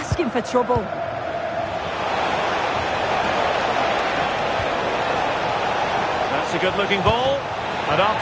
for trouble. That's a good-looking ball. And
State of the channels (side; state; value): both; identical; correlation 1.00